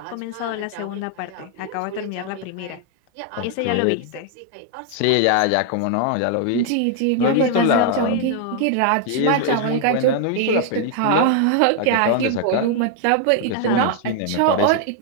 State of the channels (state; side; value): different; both; correlation 0.00